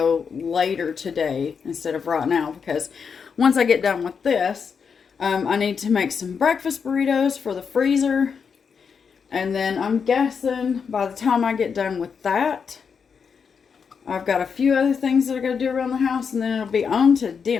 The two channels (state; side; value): quieter; right; 6.2 dB